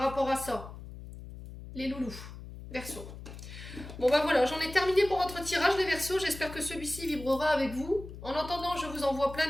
à ça. Les loulous, Verseaux. Bon ben voilà, j'en ai terminé pour votre tirage les Verseaux, j'espère que celui-ci vibrera avec vous. En attendant, je vous envoie plein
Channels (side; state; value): left; noise; hum, 13 dB below the sound